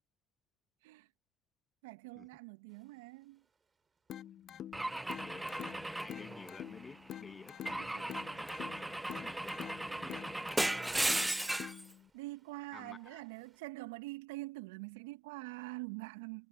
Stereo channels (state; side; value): normal; both; correlation 0.84